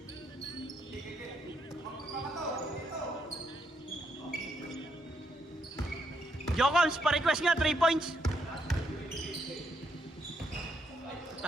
Jokons, pa-request nga, 3 points.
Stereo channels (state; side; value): normal; both; correlation 0.76